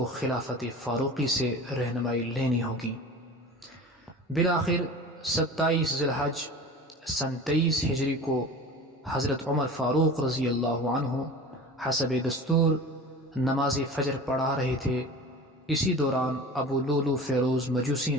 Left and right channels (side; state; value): both; normal; correlation 0.36